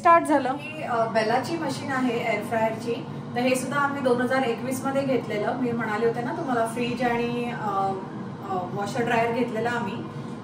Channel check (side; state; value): both; identical; correlation 1.00